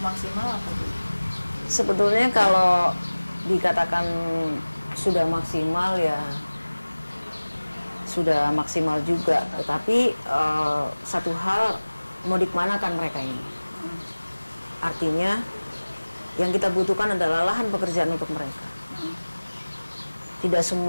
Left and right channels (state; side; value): inverted; both; correlation -1.00